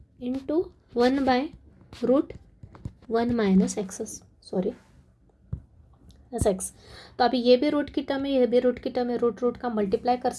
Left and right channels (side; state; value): both; identical; correlation 1.00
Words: into 1/√1 minus x, sorry S x. तो अभी ये भी रूट की टर्म है, ये भी रूट की टर्म है, रूट का मल्टीप्लाई कर